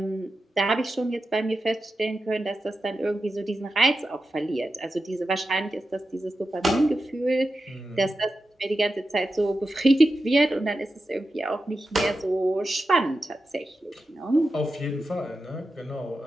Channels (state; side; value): normal; both; correlation 0.91